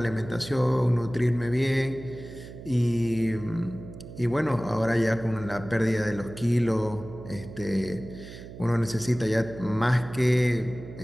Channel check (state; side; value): noise; right; hum, 14 dB below the sound